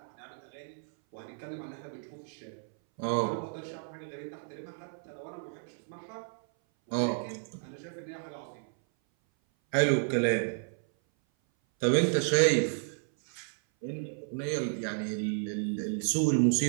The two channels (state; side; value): silent; left; 56 dB below the other